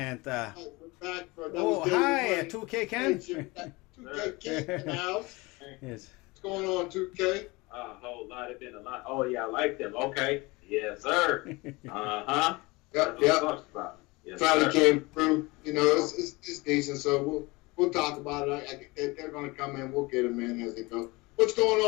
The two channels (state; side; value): quieter; right; 23.8 dB